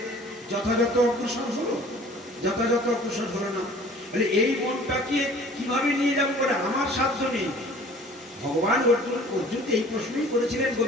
যথাযথ অগ্রসর হলো? যথাযথ অগ্রসর হলো না। তাহলে এই মনটাকে কিভাবে নিয়ে যাবো বলে আমার সাধ্য নেই। ভগবান অর্জুনকে এই প্রশ্নই করেছিলেন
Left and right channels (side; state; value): both; normal; correlation 0.50